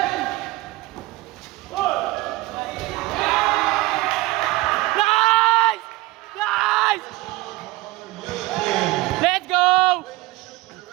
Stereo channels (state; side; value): quieter; left; 19.9 dB